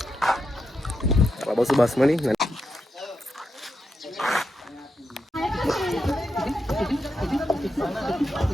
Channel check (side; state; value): both; normal; correlation 0.85